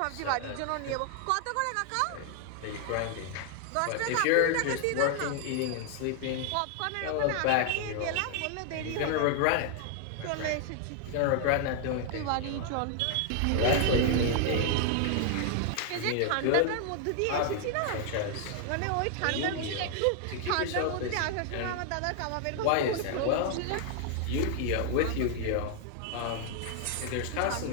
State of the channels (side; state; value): both; different; correlation 0.00